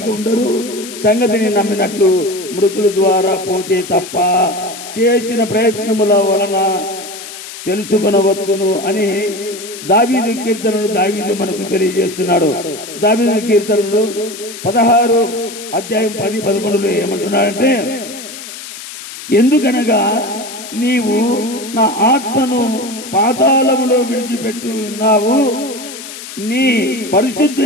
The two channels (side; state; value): left; noise; hiss, 12 dB below the sound